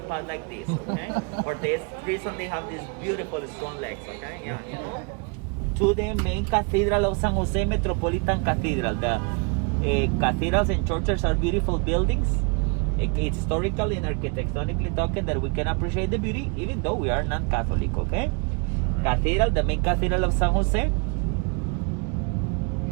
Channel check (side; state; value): left; quieter; 35.1 dB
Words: past like this, okay? For this reason, they have these beautiful, strong legs, okay? Yeah, you know? To the main Cathedral of San Jose, Metropolitan Cathedral. The cathedrals and churches are beautiful buildings. It's historically and architectonically talking that we can appreciate the beauty, even though we are non-Catholic, okay? Cathedral, the main Cathedral of San Jose,